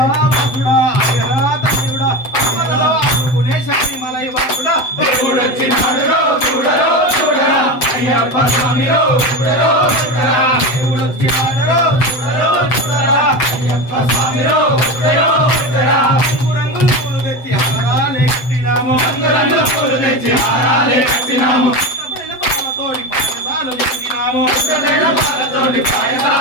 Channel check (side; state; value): right; late; 7.9 ms